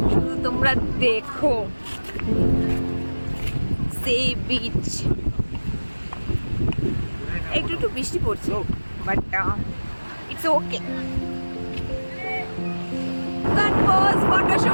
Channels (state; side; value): inverted; both; correlation -1.00